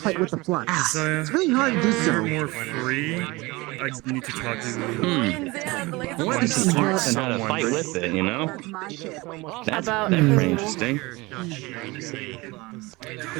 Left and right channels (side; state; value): left; quieter; 22.9 dB